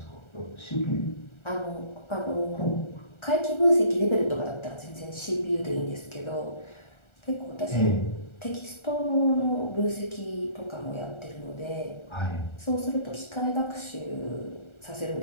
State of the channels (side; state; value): right; late; 1.4 ms